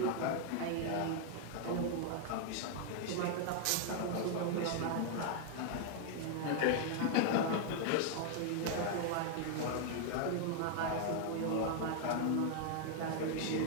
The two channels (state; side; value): different; both; correlation 0.00